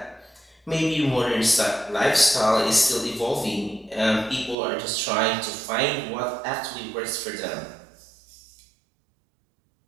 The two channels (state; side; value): drops out; left; at 4.5 s